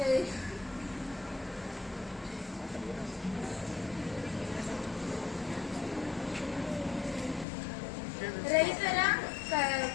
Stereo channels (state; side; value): drops out; right; at 7.5 s